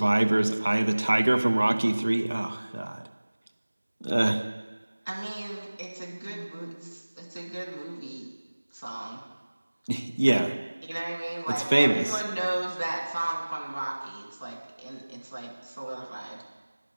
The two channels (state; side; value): inverted; both; correlation -1.00